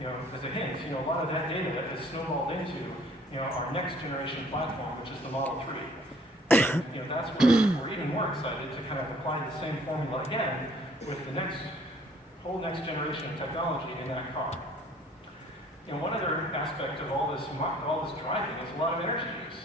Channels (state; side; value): normal; both; correlation 0.57